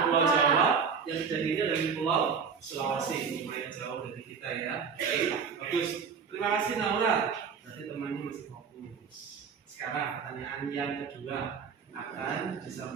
Pulau Jawa. Yang kejadiannya dari Pulau Sulawesi. Lumayan jauh dari kita ya. Oke, bagus. Terima kasih Naura. Berarti temannya masih fokus. Sekarang pertanyaan yang kedua akan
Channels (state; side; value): quieter; left; 6.1 dB